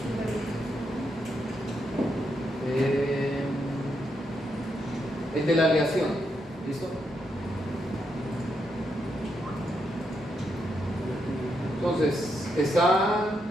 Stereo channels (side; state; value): both; normal; correlation 0.81